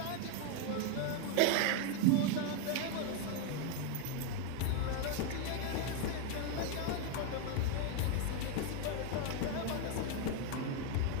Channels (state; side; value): different; both; correlation 0.01